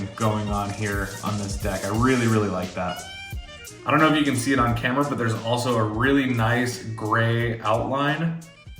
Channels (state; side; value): identical; both; correlation 1.00